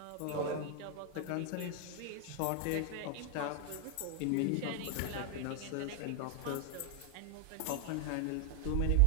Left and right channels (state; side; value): different; both; correlation 0.00